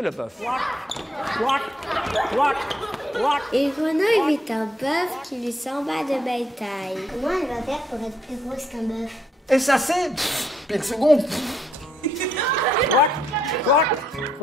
bœuf. Une grenouille vit un bœuf qui lui semble de belle taille. Comment elle va faire pour être plus grosse qu'un bœuf? Et ça c'est... Puis le second...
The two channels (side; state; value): both; normal; correlation 0.74